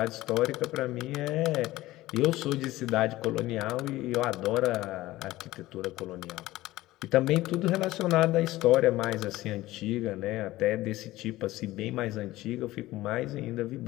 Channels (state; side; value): quieter; right; 17.1 dB